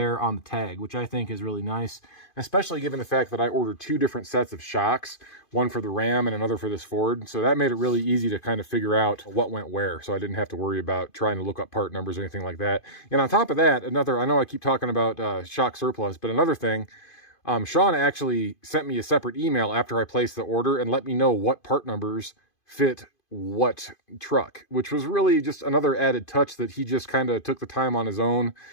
on the tag, which I think is really nice, especially given the fact that I ordered 2 different sets of shocks, one for the Ram and another for this Ford. So that made it really easy to kind of figure out what went where, so I didn't have to worry about trying to look up part numbers or anything like that. And on top of that, I know I keep talking about Shock Surplus, but another thing, Sean actually sent me a separate email after I placed the order and let me know what part numbers fit what truck, which was really just another added touch that he just kind of took the time on his own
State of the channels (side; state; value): right; late; 2.5 ms